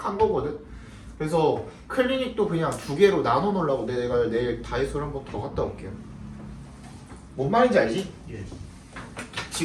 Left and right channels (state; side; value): identical; both; correlation 1.00